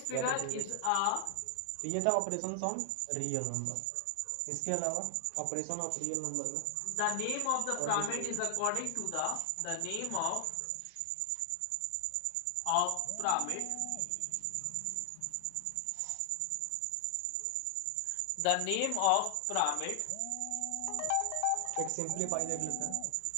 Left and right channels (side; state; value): both; different; correlation 0.00